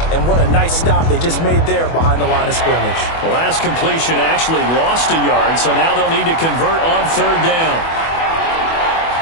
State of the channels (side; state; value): right; late; 24 ms